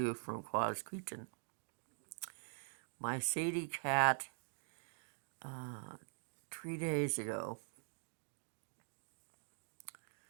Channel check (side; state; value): left; silent; digital silence